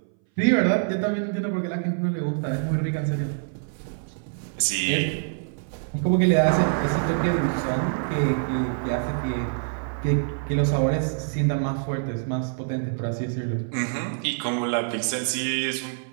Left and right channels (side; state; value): left; silent; 60 dB below the other